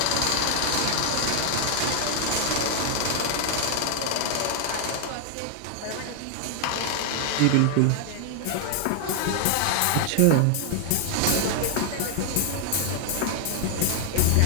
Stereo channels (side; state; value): both; different; correlation 0.00